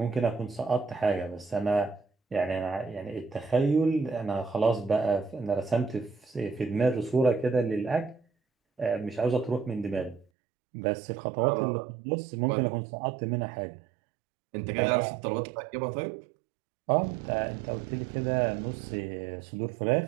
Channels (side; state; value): left; drops out; at 10.2 s